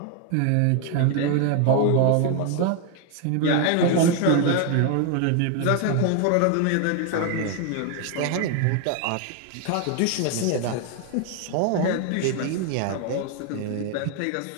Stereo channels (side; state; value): both; different; correlation 0.01